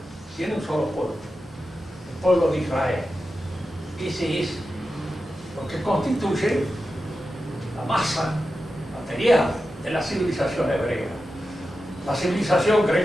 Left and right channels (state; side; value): normal; both; correlation 0.91